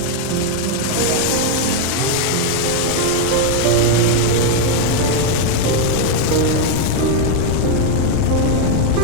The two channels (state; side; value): different; both; correlation 0.01